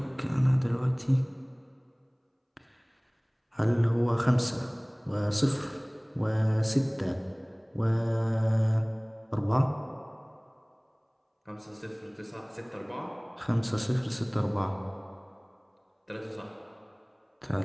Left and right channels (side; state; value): both; identical; correlation 1.00